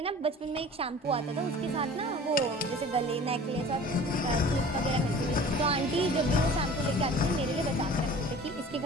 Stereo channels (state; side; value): normal; both; correlation 0.43